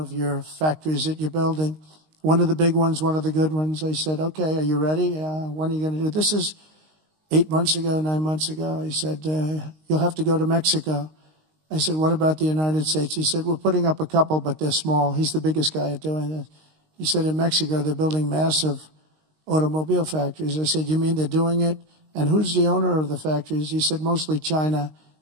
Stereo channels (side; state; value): left; late; 19 ms